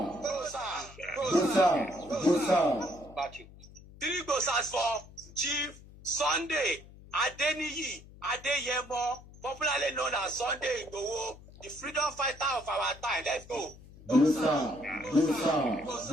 3 glosars for Chief Sunday Adeniyi Adeyemo, popularly known as Sunday Igboho, the freedom fighter of our time. Let's go. 3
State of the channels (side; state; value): left; noise; hum, 20 dB below the sound